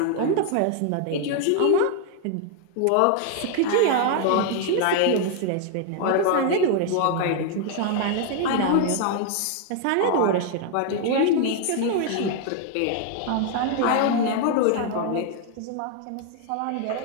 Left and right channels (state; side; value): different; both; correlation 0.00